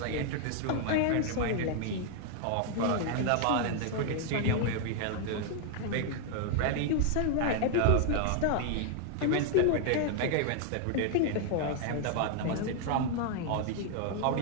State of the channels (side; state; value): both; different; correlation 0.00